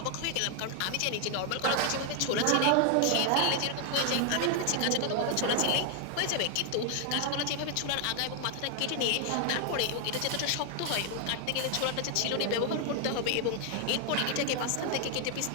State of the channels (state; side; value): different; both; correlation 0.00